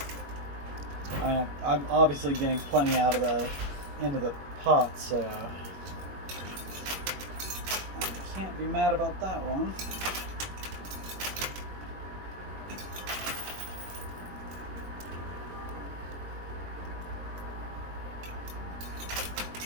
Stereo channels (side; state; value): left; late; 21 ms